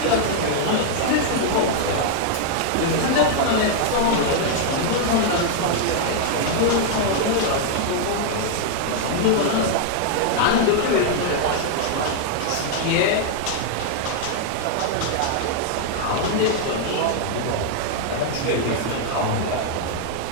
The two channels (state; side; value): different; both; correlation 0.00